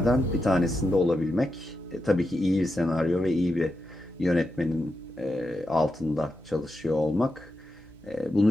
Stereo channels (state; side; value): normal; both; correlation 0.87